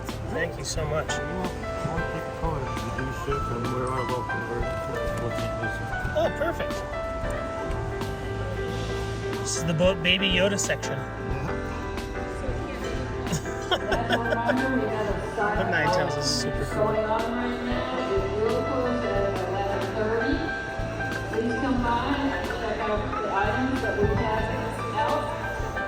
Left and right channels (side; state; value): both; identical; correlation 1.00